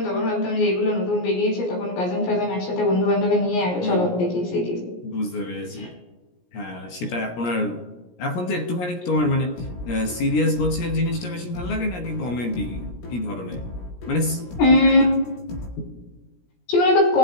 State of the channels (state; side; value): late; right; 17 ms